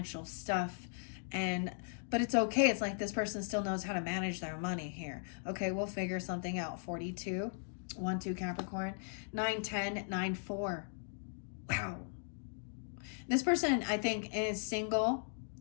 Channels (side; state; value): right; silent; digital silence